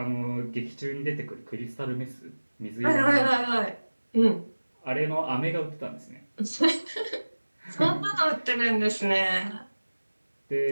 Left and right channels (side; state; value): both; inverted; correlation -1.00